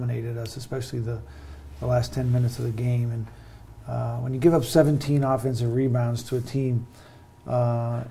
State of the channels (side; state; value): both; identical; correlation 1.00